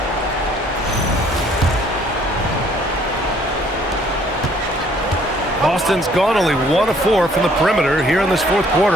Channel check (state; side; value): normal; both; correlation 0.61